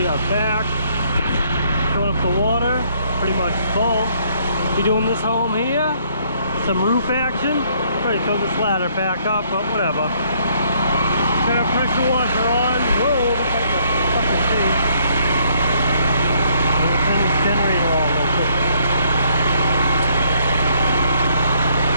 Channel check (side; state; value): both; inverted; correlation -0.66